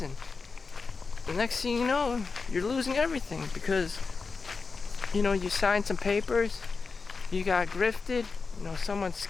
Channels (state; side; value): quieter; right; 4.6 dB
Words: and the next thing you know, you're losing everything because, you signed some papers, you got grifted, someone